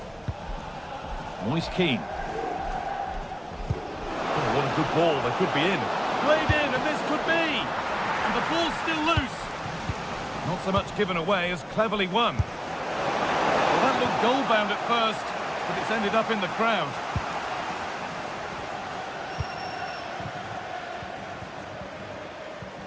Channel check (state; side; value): identical; both; correlation 1.00